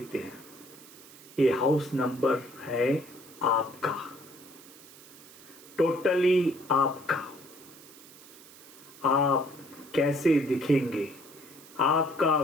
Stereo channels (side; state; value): right; noise; hiss, 20 dB below the sound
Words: हैं? ये हाउस नंबर है आपका, टोटली आपका। आप कैसे दिखेंगे, आपका